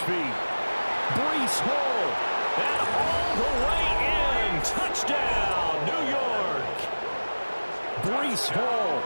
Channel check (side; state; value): both; inverted; correlation -1.00